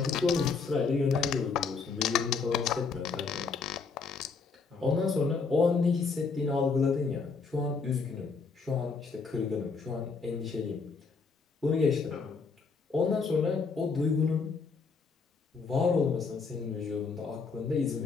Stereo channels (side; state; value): right; quieter; 4.8 dB